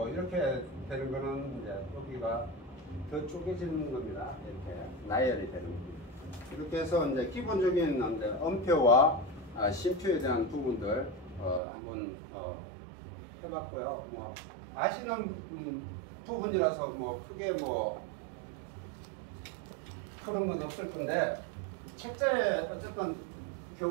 이렇게 되는 거는 이제 여기가 더 쪼개지는 겁니다. 이렇게 나열이 되는 겁니다. 이렇게 해서 이제 기본적인 음표와 심표에 대한 부분들 한번 해봤고요. 뭐 아시는 부분이라서 뭐 크게 뭐 그런 건 없을 건데 책자에 어쨌든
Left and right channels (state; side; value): drops out; left; at 11.6 s